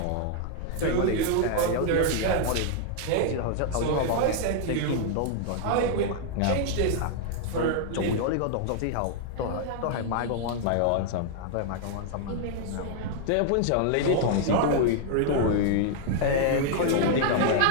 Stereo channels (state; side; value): different; both; correlation 0.00